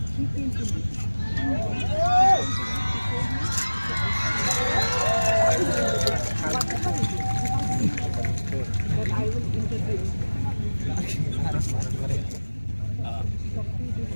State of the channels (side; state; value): both; inverted; correlation -1.00